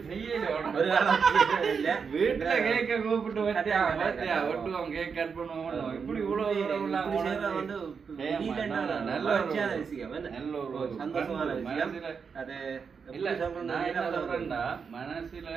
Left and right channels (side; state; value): left; quieter; 5.9 dB